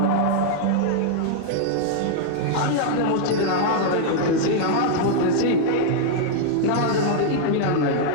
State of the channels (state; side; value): different; both; correlation -0.01